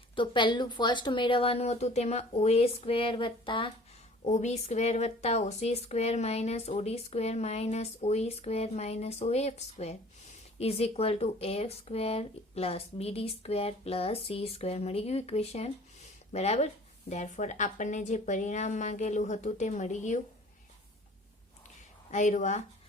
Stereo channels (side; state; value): both; normal; correlation 0.49